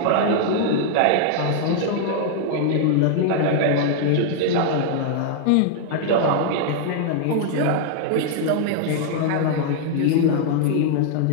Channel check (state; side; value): different; both; correlation 0.00